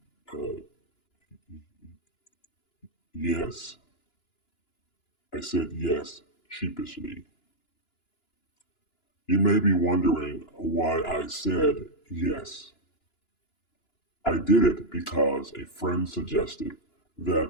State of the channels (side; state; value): right; late; 2.9 ms